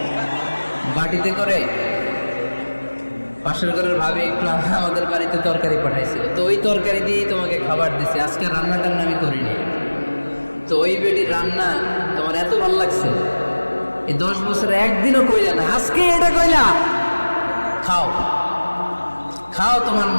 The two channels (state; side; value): inverted; both; correlation -1.00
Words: বাটিতে করে, পাশের ঘরের ভাবি একটু আমাদের বাড়িতে তরকারি পাঠাইছিল, তো ওই তরকারি দিয়েই তোমাকে খাবার দিছে, আজকে রান্নাটার আমি করিনি। তো ওই বেটির রান্না তোমার এত ভালো লাগছে, এই 10 বছরে একদিনও কইলা না, আজকে এটা কইলা, খাও খাও, তোমার